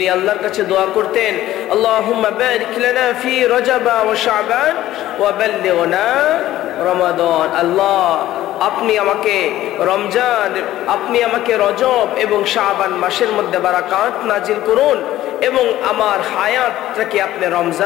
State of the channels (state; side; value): quieter; right; 14.3 dB